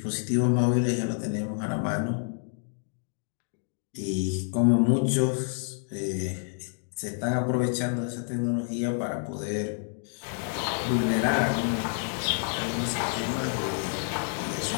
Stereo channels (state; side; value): silent; right; 59 dB below the other